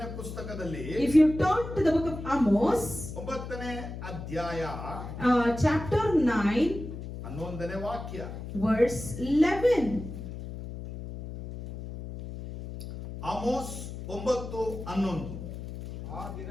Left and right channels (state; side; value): noise; left; hum, 9 dB below the sound